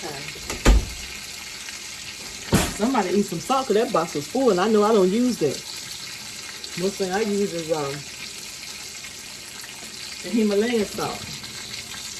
time. Somebody eat some salt because that box was full, and I know I don't use that. Most thing I use is the Himalayan salt.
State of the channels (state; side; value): identical; both; correlation 1.00